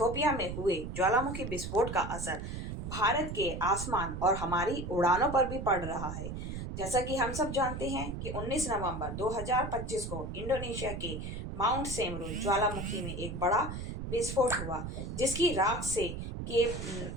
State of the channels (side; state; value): right; noise; rumble, 6 dB below the sound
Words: में हुए ज्वालामुखी विस्फोट का असर भारत के आसमान और हमारी उड़ानों पर भी पड़ रहा है। जैसा कि हम सब जानते हैं कि 19 नवंबर 2025 को इंडोनेशिया के माउंट सेमरू ज्वालामुखी में एक बड़ा विस्फोट हुआ, जिसकी राख